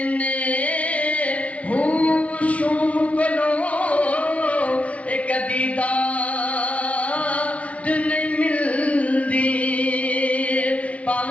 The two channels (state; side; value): late; right; 0.068 ms